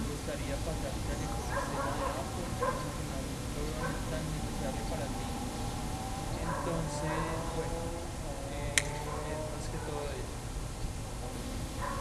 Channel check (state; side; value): identical; both; correlation 1.00